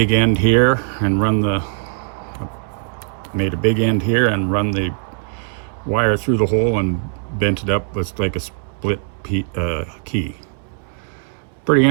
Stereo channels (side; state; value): left; silent; 66 dB below the other